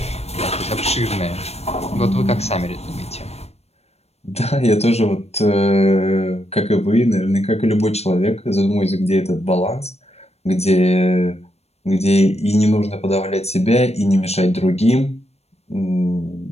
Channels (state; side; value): late; right; 0.31 ms